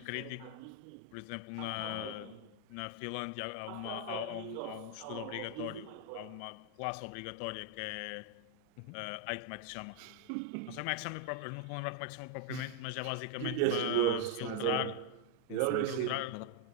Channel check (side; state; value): both; different; correlation 0.00